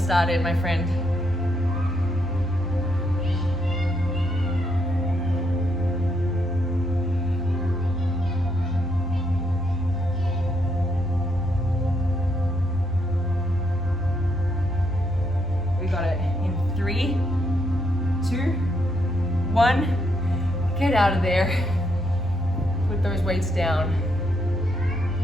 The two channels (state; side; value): normal; both; correlation 0.76